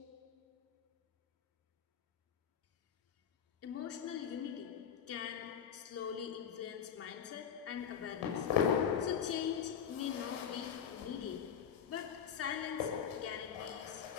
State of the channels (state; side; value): quieter; right; 8.0 dB